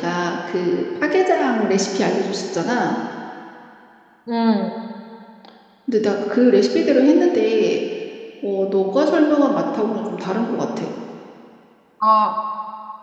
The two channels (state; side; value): identical; both; correlation 1.00